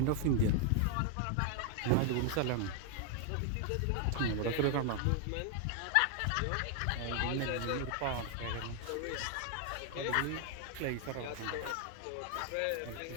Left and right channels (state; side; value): different; both; correlation 0.00